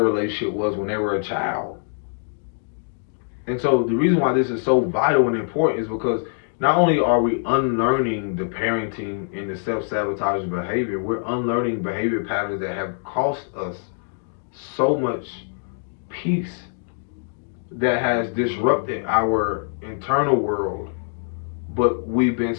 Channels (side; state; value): right; silent; digital silence